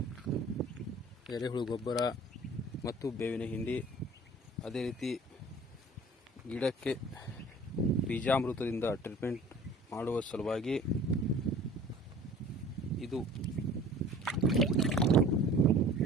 ಎರೆಹುಳು ಗೊಬ್ಬರ ಮತ್ತು ಬೇವಿನ ಹಿಂಡಿ, ಅದೇ ರೀತಿ ಗಿಡಕ್ಕೆ ಬೀಜಾಮೃತದಿಂದ ಟ್ರೀಟ್ಮೆಂಟ್ ಮಾಡುವ ಸಲುವಾಗಿ ಇದು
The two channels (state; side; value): normal; both; correlation 0.47